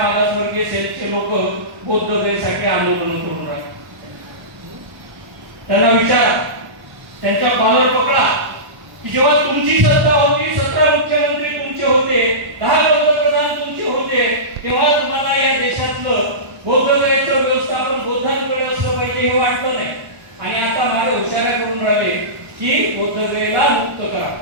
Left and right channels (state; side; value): late; left; 1.0 ms